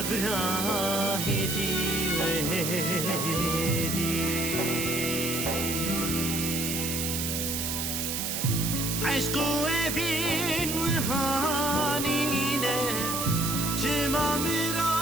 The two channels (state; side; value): noise; right; hiss, 1 dB below the sound